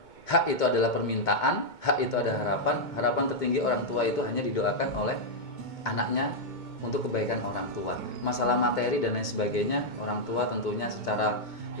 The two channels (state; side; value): late; right; 2.2 ms